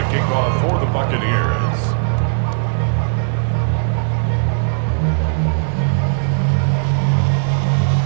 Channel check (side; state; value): left; silent; digital silence